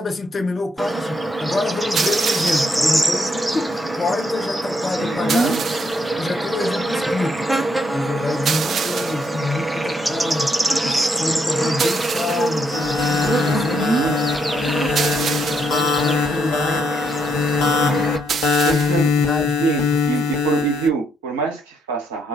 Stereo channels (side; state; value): both; normal; correlation 0.75